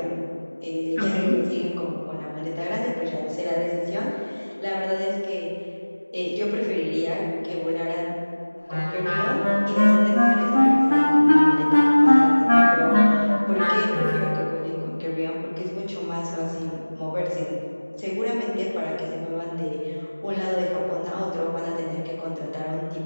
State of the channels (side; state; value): both; inverted; correlation -1.00